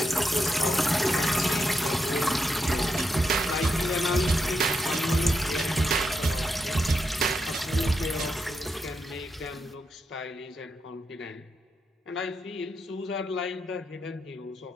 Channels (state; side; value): normal; both; correlation 0.84